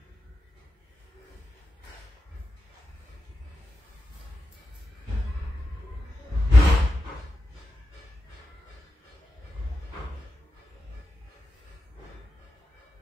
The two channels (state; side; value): normal; both; correlation 0.89